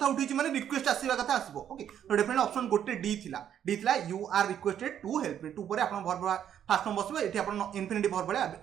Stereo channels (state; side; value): quieter; left; 9.7 dB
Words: उठी माने रिक्वेस्ट आसीबा कथा आसीबो ओके तो डेफिनेट ऑप्शन गोटे डी थिला you are requested to help me to पर आपण वर्ब फास्ट फॉर्म बसबो एठी आपण इन्फिनिटी वर्ब